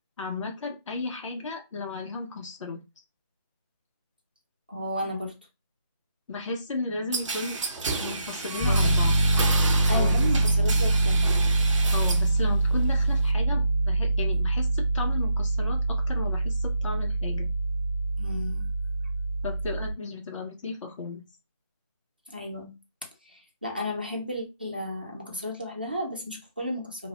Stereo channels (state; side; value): inverted; both; correlation -0.79